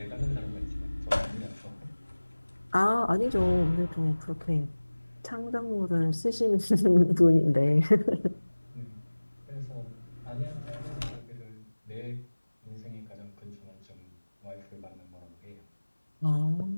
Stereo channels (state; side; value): inverted; both; correlation -1.00